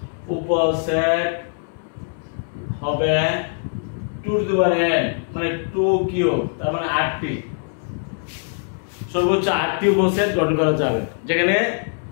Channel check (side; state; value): right; silent; 64 dB below the other